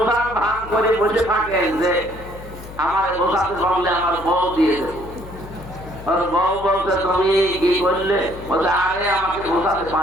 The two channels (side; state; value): left; noise; hum, 15 dB below the sound